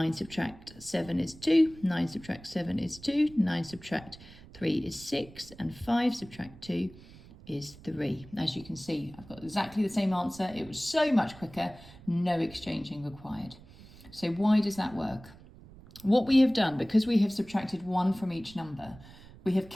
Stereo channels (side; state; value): right; noise; rumble, 20 dB below the sound